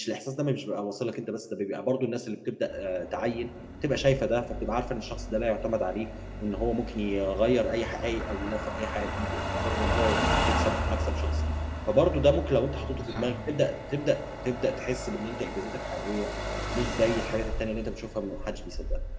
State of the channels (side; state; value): both; identical; correlation 1.00